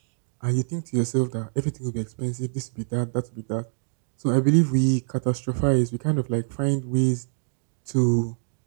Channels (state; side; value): silent; left; digital silence